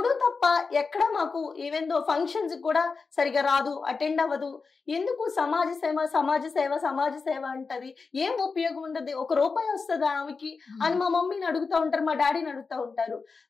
తప్ప ఎక్కడ మాకు ఈవెన్ ఫంక్షన్స్ కూడా సరిగా రాదు, అటెండ్ అవ్వదు. ఎందుకు సమాజ సేవ సమాజ సేవ సమాజ సేవ అంటది? ఏం ఉపయోగం ఉండదు, ₹1 వస్తుందా ఆమెకి అని మా మమ్మీని అడుగుతూ ఉంటారు, మా డాడీని అడుగుతూ ఉంటారు.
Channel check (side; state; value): right; quieter; 4.6 dB